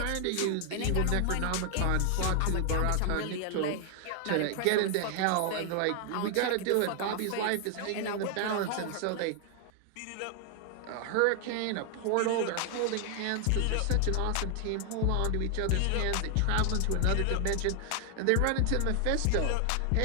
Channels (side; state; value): both; different; correlation 0.00